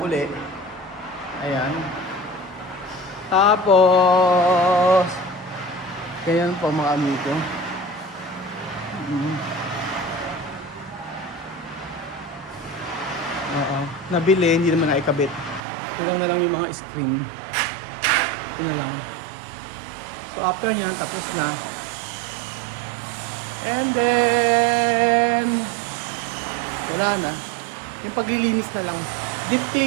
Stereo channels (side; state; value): left; drops out; at 15.6 s